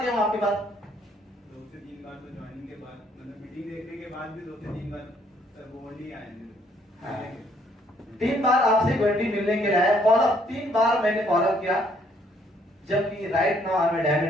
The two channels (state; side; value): normal; both; correlation 0.66